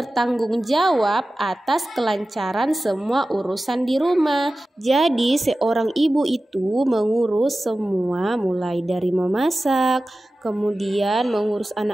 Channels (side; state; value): both; normal; correlation 0.95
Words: jawab atas kelancaran semua urusan di rumah. Jadi seorang ibu itu mengurus semua, mulai dari memasak, kemudian mengurus